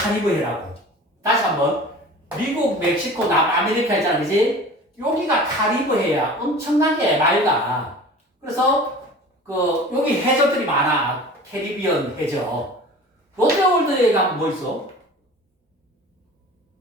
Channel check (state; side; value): normal; both; correlation 0.40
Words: 다시 한번. 미국, 멕시코, 남아메리카 있잖아. 그지? 여기가 카리브해야. 엄청나게 맑아. 그래서 여기 해적들이 많아. 캐리비언 해적. 롯데월드에 가면 뭐 있어?